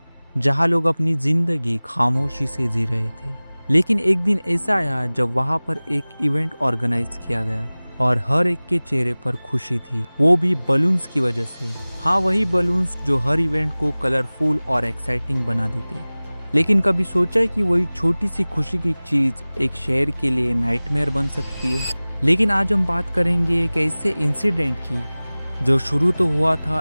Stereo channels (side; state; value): both; inverted; correlation -0.99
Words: जहां लोग अपनी जिंदगी खामोशी से जी रहे थे। लेकिन एक दिन ऐसा आया जब वहां पर एक इवेंट ऑर्गेनाइज किया गया और हर एक के चेहरे पर खुशी थी, वो भी बलून्स की वजह से। हाँ, वही बलून्स जो हर इवेंट को कलरफुल और एक्साइटिंग बना देते। लेकिन कभी सोचा है कि वही छोटी सी खुशी की चीज एक शहर के लिए नाइटमेयर बन सकती है। लेकिन आज हम बात करेंगे एक ऐसे इंसिडेंट की जो शुरू तो हुआ